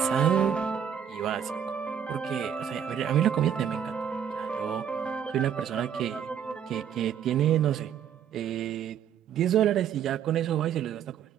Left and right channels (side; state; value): left; quieter; 8.7 dB